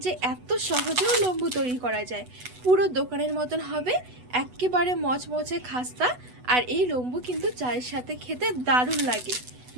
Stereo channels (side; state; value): left; late; 8.1 ms